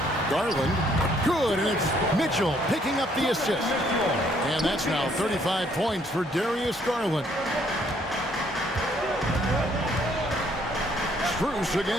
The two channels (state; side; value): normal; both; correlation 0.66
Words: Garland, good, and it's Mitchell picking up the assist. And that's now 35 points for Darius Garland. Strus